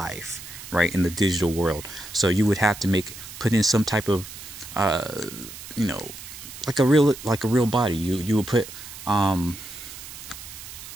right, in the digital world. So you would have to put in some type of you know, like a real body. You would put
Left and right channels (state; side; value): noise; right; hiss, 13 dB below the sound